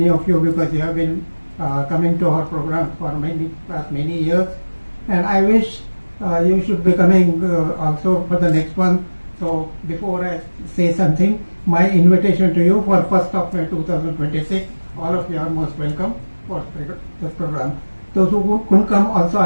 of you because you have been coming to our program for many years, and I wish you should be coming also for the next one. So before I say something, my invitation to you for 1st of May 2026, all of you are most welcome for this program. Those who couldn't come also,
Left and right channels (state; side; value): inverted; both; correlation -1.00